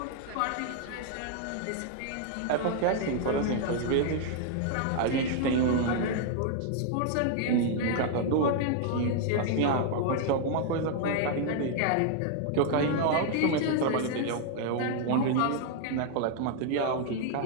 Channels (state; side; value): different; both; correlation 0.00